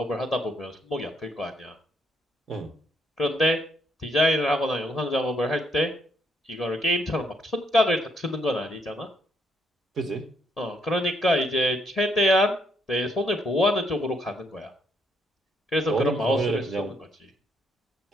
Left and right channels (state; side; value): normal; both; correlation 0.72